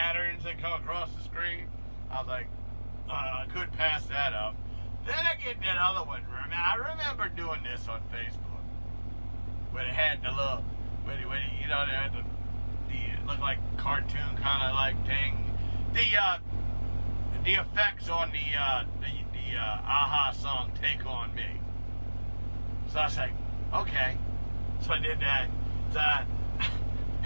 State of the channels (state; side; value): inverted; both; correlation -1.00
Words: that come across the screen. I was like, I couldn't pass that up. Then I get that other one. I remember doing this on Facebook, when it had the little, when you know, they had the it looked like cartoon kind of like thing. The effects on the Aha song "Take on Me." So I was like, okay. So I did that. So I